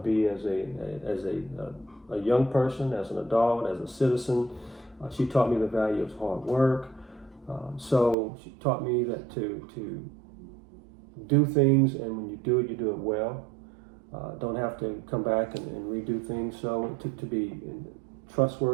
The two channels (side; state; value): left; drops out; at 8.2 s